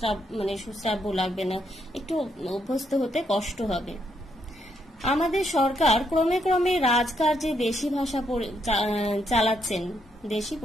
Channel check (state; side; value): normal; both; correlation 0.76